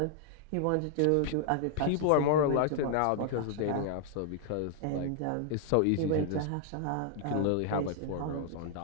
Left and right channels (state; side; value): different; both; correlation 0.00